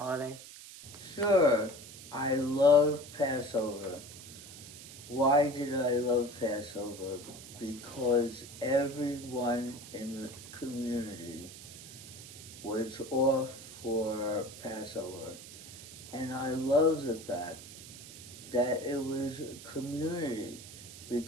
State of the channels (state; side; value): noise; right; hiss, 15 dB below the sound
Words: Sure. I love Passover. Why did I love Passover? Because everyone in the community was off for Passover. And I love the fact that it was a community